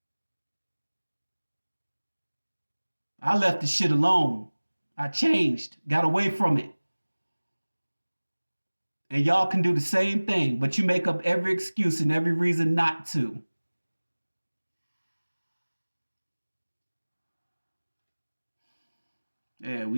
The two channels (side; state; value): both; inverted; correlation -1.00